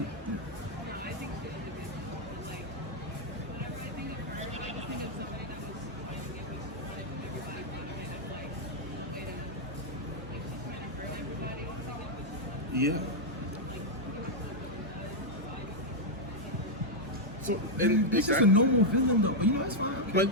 Yeah. So, and it's just a normal villain, though. But you know, that's fine.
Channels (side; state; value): both; normal; correlation -0.02